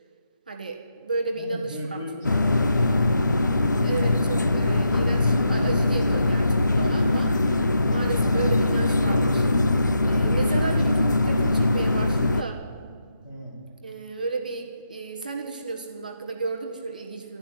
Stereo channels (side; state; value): both; inverted; correlation -0.82